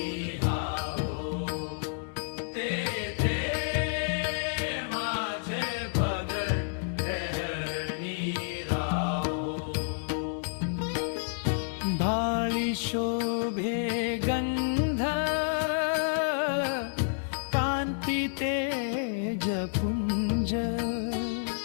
भाळी शोभे गंध कांती तेज पुंज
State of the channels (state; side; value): silent; right; digital silence